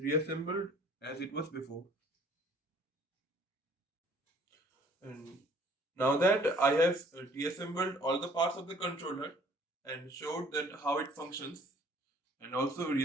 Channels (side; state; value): both; normal; correlation 0.56